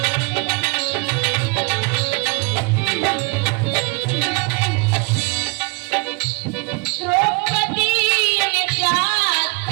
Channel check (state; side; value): quieter; left; 29.8 dB